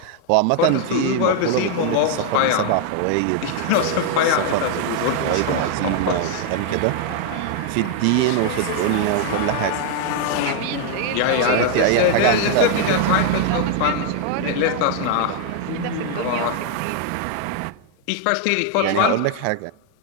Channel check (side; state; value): both; different; correlation 0.00